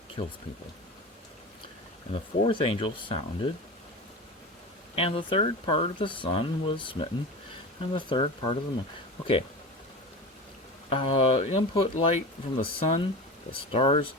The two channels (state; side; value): normal; both; correlation 0.29